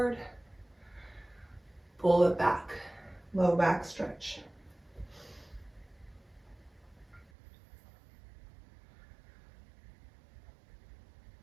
Pull it back, low back stretch.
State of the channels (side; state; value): left; drops out; at 7.3 s